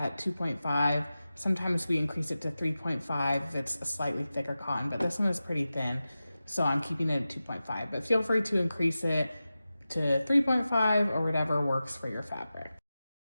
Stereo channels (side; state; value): both; inverted; correlation -0.94